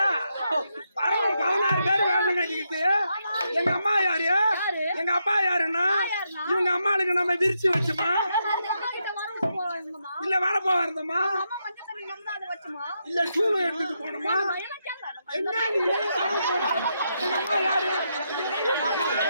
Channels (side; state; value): both; inverted; correlation -0.82